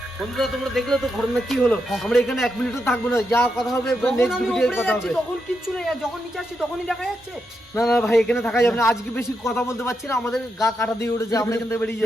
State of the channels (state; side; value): normal; both; correlation 0.83